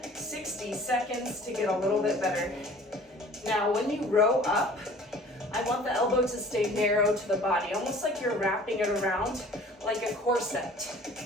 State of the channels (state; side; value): normal; both; correlation 0.48